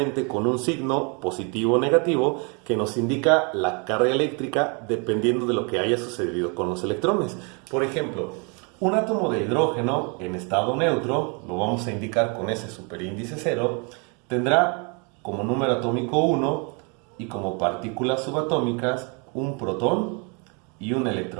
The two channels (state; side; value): quieter; left; 34.3 dB